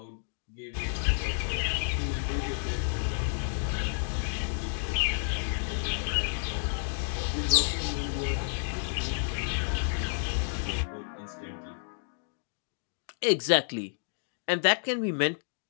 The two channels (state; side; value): silent; right; digital silence